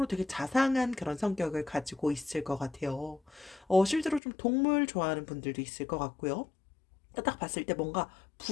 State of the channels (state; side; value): drops out; right; at 4.2 s